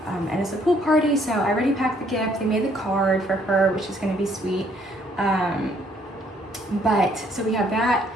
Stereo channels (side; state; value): both; normal; correlation 0.66